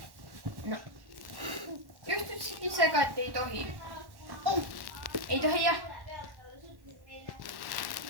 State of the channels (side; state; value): left; late; 1.1 ms